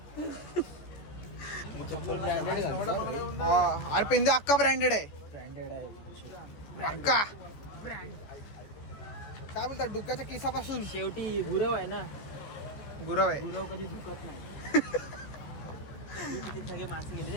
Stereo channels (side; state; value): right; late; 14 ms